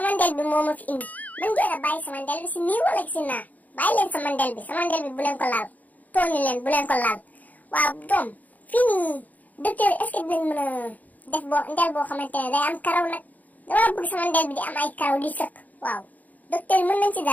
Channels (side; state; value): right; late; 0.079 ms